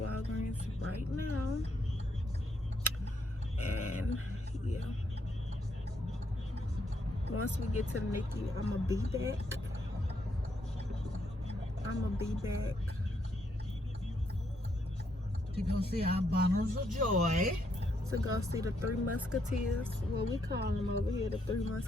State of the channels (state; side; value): normal; both; correlation 0.75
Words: right now. And yeah, once we get to the NICU, I'm gonna be back. To go see our bundles of joy. To go see the Three Musketeers. Well, we call them over here the Three